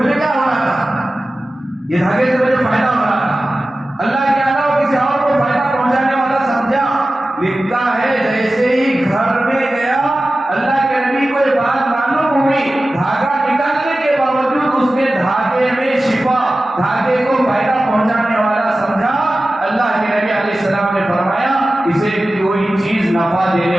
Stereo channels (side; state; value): both; normal; correlation 0.95